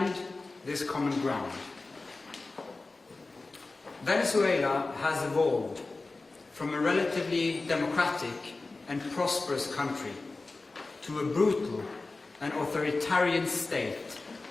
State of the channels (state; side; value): quieter; right; 3.5 dB